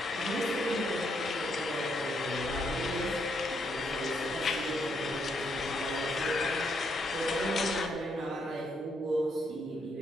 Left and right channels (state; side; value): normal; both; correlation 0.76